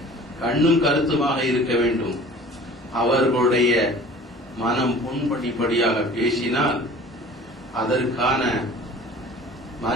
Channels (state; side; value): normal; both; correlation 0.45